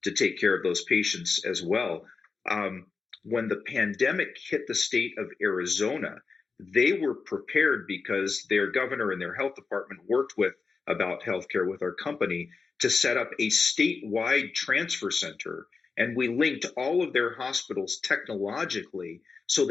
to take care of those patients as well. When the pandemic hit the state of Arizona, they were prepared because their governor and their health department worked about healthcare with our company to set up a statewide transfer center. And we linked all of their hospitals technologically so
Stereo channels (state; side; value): quieter; right; 4.7 dB